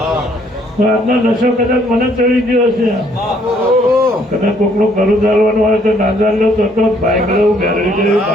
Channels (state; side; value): normal; both; correlation 0.66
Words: આજનો નશો કદાચ મને ચડી ગયો છે કદાચ કોકનું ઘરું ચાલવાનું હોય તો ના ચાલ્યો તો બાઇક લેવું બેરડી લેવું